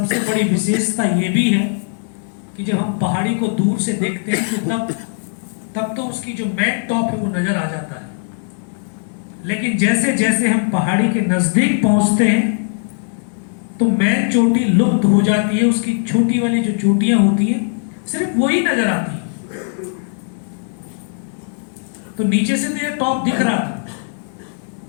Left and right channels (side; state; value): right; silent; 67 dB below the other